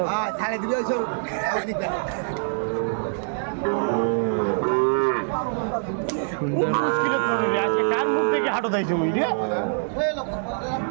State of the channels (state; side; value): silent; left; digital silence